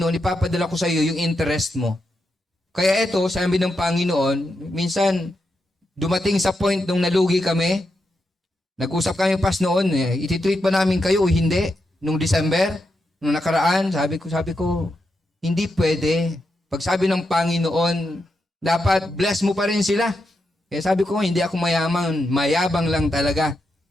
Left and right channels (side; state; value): both; normal; correlation 0.85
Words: ipapadala ko sa iyo yung interest mo. Kaya ito, sabi ng Panginoon, minsan dumating sa point nung nalugi kami, nag-usap kami pas noon, ititreat ba namin kayo o hindi? Nung December, nung nakaraan, sabi ko, hindi pwede. Pag sabi ng Panginoon, dapat bless mo pa rin sila. Kaya sabi ko, hindi ako mayaman, mayabang lang talaga.